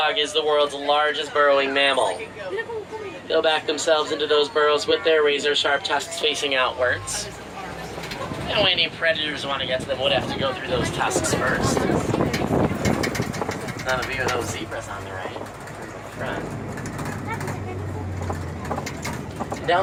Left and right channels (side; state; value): both; identical; correlation 1.00